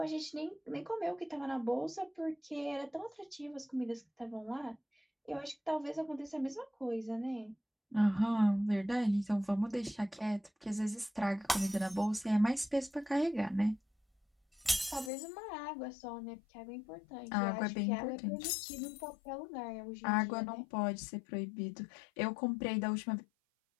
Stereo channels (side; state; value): right; drops out; at 15.1 s